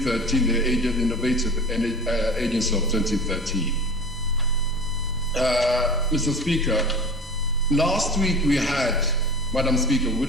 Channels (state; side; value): normal; both; correlation 0.36